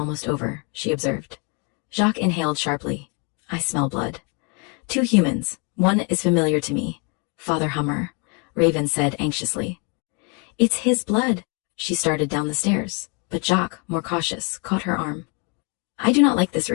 over, she observed. Jacques inhaled sharply. I smell blood. 2 humans. One is familiar to me. Father Hummer, Raven said anxiously. It's his blood. She started down the stairs, but Jacques, more cautious, caught her arm. I do not like this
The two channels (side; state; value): right; quieter; 34.1 dB